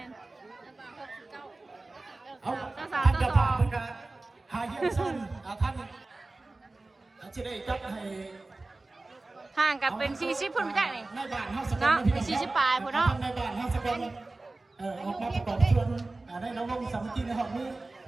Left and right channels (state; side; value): quieter; left; 3.2 dB